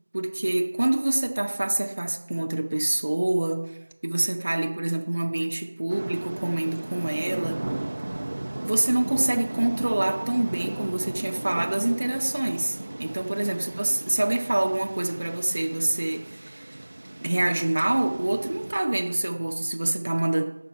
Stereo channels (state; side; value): inverted; both; correlation -1.00